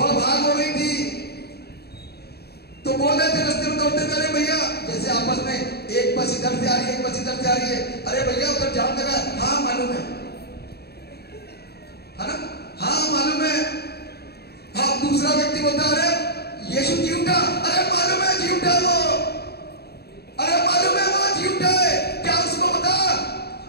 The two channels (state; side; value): late; right; 0.47 ms